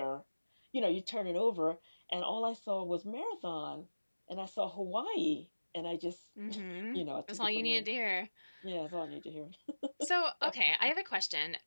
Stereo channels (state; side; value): inverted; both; correlation -1.00